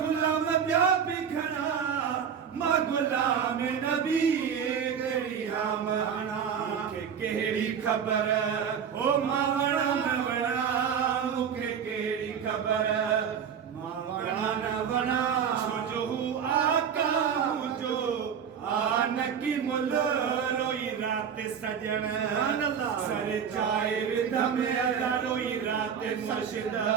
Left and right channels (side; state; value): left; quieter; 7.6 dB